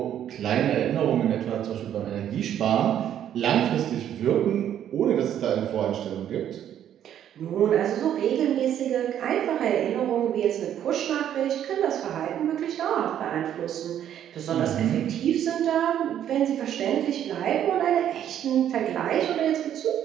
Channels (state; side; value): quieter; left; 10.4 dB